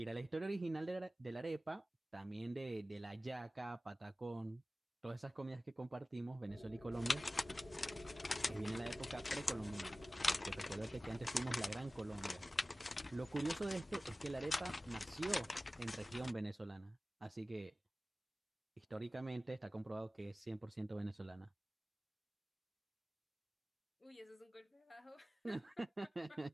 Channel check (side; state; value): both; normal; correlation 0.97